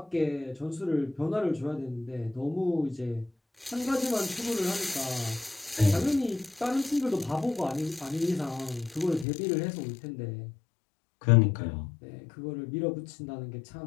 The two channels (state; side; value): drops out; right; at 9.2 s